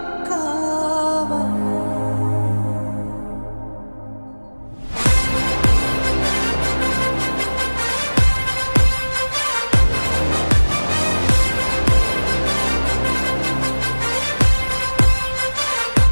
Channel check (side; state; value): both; inverted; correlation -1.00